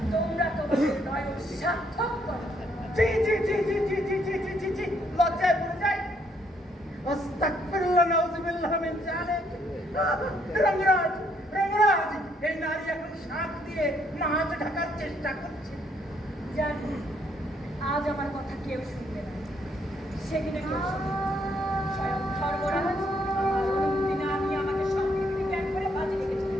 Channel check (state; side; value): normal; both; correlation 0.70